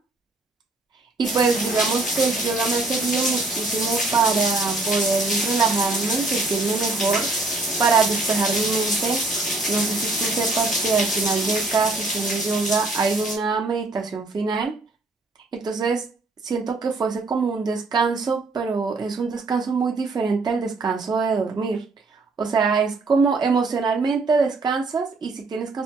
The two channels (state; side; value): quieter; left; 3.3 dB